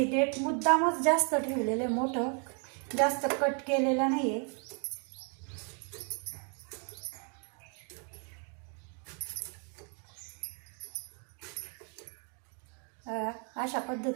देठ मुद्दामच जास्त ठेवलेले, मोठं जास्त कट केलेलं नाहीये। अशा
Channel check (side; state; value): left; quieter; 39.9 dB